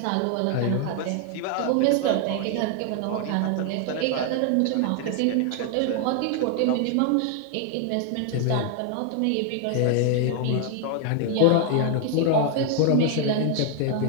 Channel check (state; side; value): different; both; correlation 0.00